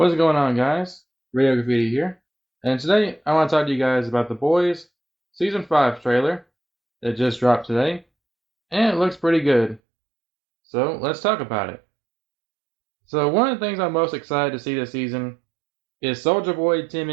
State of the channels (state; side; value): drops out; left; at 9.8 s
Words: going on, guys? Radio Graffiti here, and today I want to talk to you guys about The Boys Season 5 trailer that just dropped today, and it looks pretty good. So let's talk about it. So, one of the things I'm most excited to see this season is Soldier Boy